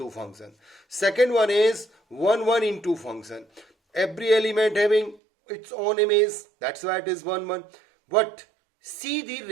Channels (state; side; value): drops out; left; at 5.2 s